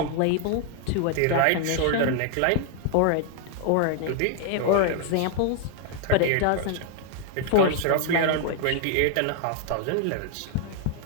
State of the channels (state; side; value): different; both; correlation 0.00